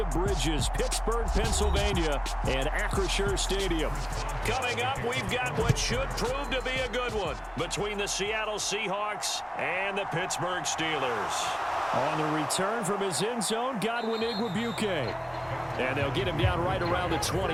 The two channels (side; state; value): both; identical; correlation 1.00